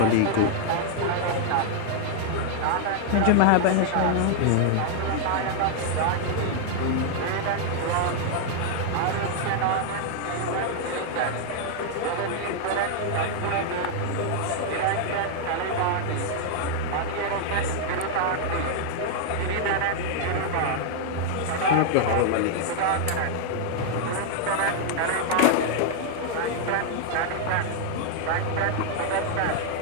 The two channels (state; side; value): different; both; correlation 0.00